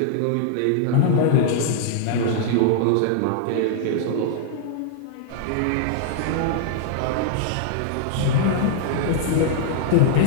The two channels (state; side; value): different; both; correlation -0.01